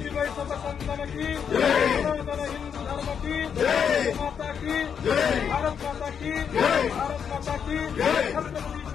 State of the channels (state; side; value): quieter; right; 7.4 dB